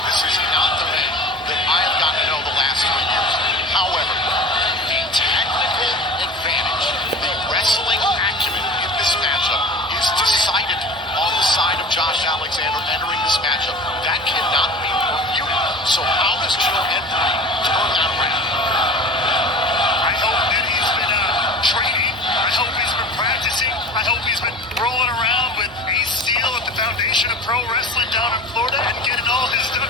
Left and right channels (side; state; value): both; normal; correlation 0.37